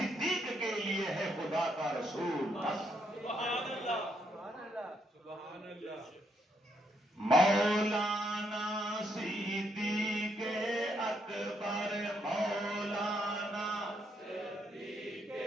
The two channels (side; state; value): both; normal; correlation 0.75